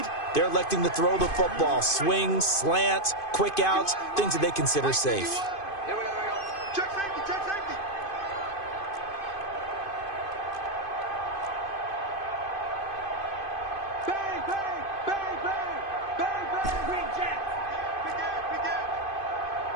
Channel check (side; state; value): right; late; 2.5 ms